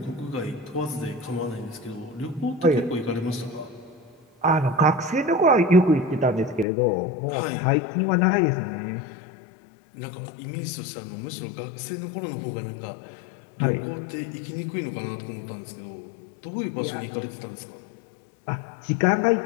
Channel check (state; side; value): drops out; right; at 6.7 s